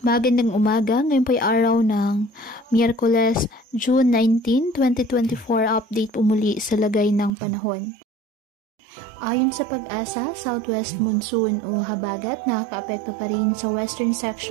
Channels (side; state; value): left; drops out; at 7.3 s